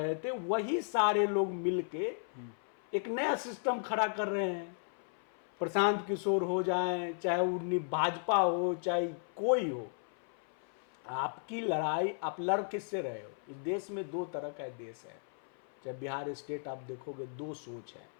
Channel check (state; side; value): silent; right; 55 dB below the other